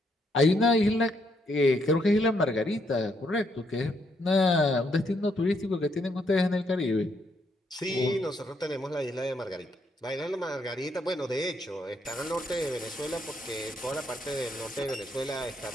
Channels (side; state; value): both; normal; correlation 0.74